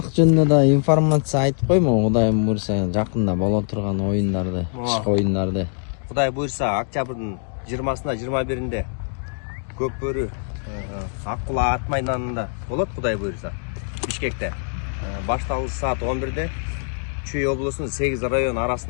жөнүндө да информация айтып коймо, Кудайым буйруса, жакында боло турган оюндарды, кышкы оюндарды. Кудай буйруса, октябрдын 20-сына 21-inde көк бөрү Аккула ат майданында болот, Кудай буйруса. Бишкекте. Башталышы саат 11-де Чүй облусунун 8 район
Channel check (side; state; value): right; silent; 57 dB below the other